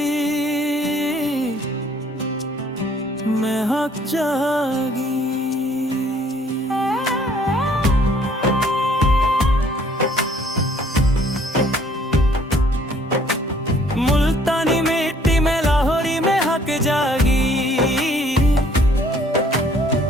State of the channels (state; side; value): normal; both; correlation 0.60